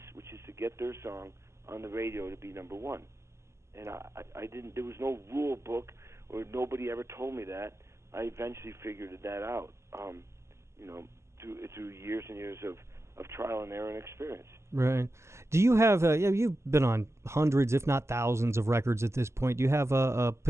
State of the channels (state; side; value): late; left; 0.13 ms